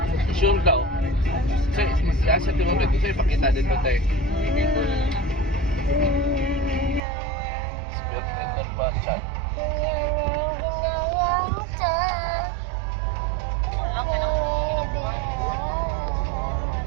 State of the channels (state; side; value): drops out; left; at 7.0 s